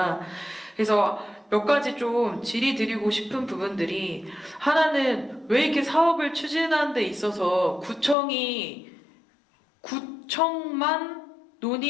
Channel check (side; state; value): right; drops out; at 8.2 s